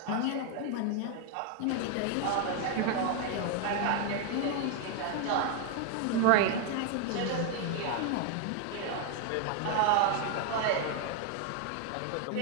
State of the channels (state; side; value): different; both; correlation 0.00